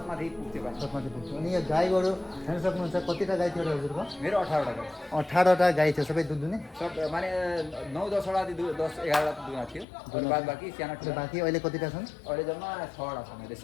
माथि पुग्थ्यो पानी छत माथि पुग्थ्यो अनि यो गाई गोरु हेर्न सक्नुहुन्छ कतिवटा गाई थियो हजुरको मेरो 18 वटा 18वटा गाई थियो सबै दुध दुने सब माने 9-10 वटा 10-11 वटा दुना थियो अनि बाद बाँकी साना ठुला बाँकी अहिले कतिवटा छन् अहिले जम्मा 6 वटा छ मैले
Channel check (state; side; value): drops out; right; at 9.9 s